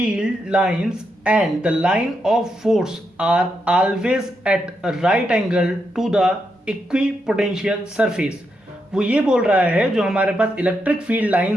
lines and the line of force are always at a right angle to the equipotential surface। वो ये बोल रहा है जो हमारे पास इलेक्ट्रिक फील्ड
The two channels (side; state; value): both; normal; correlation 0.83